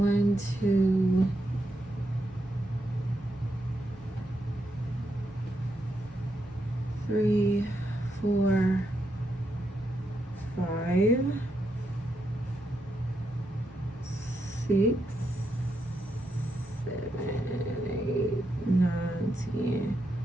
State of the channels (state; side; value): noise; right; hum, 23 dB below the sound